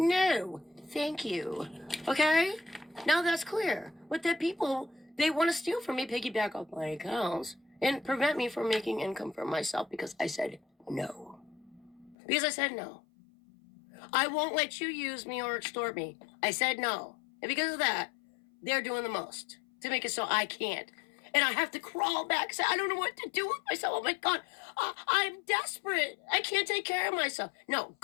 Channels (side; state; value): right; drops out; at 12.2 s